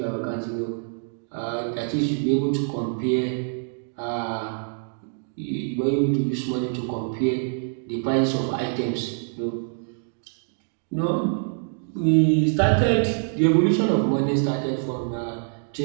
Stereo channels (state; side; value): silent; left; digital silence